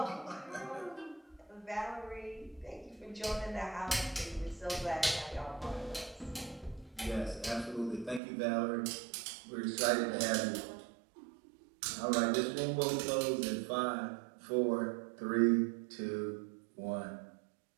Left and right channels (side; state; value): left; drops out; at 8.2 s